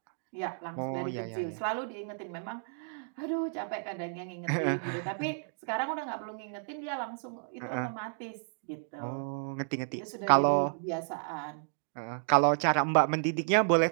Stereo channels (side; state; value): left; silent; digital silence